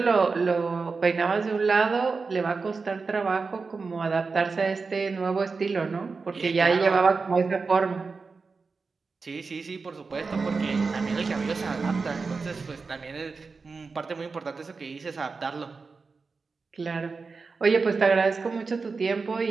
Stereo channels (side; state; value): left; quieter; 4.5 dB